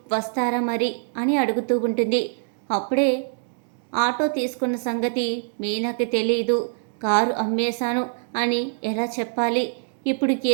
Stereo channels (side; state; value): left; silent; digital silence